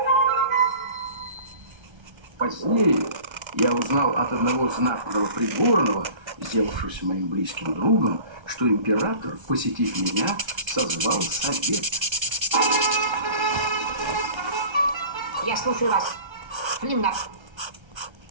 Позднее я узнал от одного знатного придворного, сделавшегося моим близким другом, что император, посетив меня, созвал совет. Я слушаю вас. Флимнап.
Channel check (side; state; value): left; late; 1.3 ms